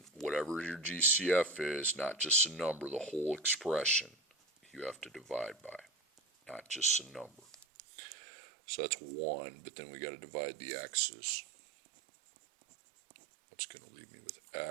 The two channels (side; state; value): left; drops out; at 7.7 s